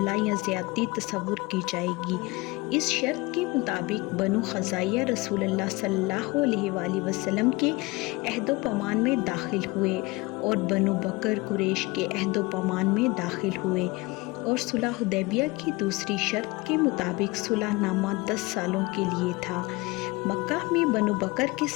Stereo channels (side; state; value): right; quieter; 23.5 dB